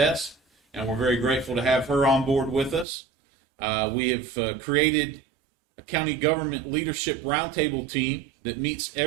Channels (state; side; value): drops out; left; at 2.9 s